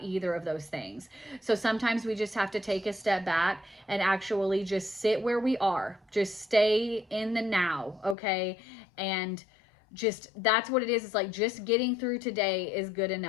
either of those things. So sometimes we just have to take a step back and actually just sit where we are. Just stay in the now, okay? And just, that's what it is. It's like just getting through today is good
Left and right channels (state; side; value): drops out; right; at 8.2 s